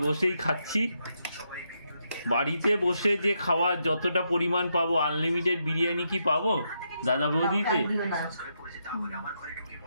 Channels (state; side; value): inverted; both; correlation -0.81